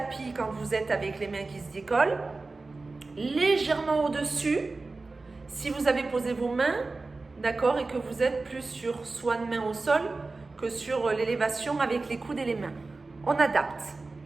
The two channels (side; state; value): left; quieter; 3.6 dB